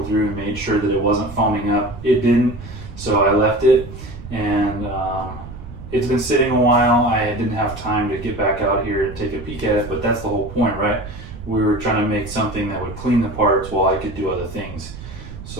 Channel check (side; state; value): right; noise; rumble, 12 dB below the sound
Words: through and made sure that it wasn't foaming up. It didn't, so I left it, and it's been sitting a while. I didn't have time to get back out here and take a peek at it, but that's the whole point, right? We were trying to make something that would clean the parts while I could do other things.